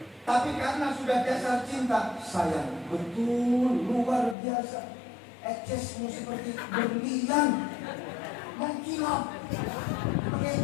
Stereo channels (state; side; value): drops out; right; at 4.4 s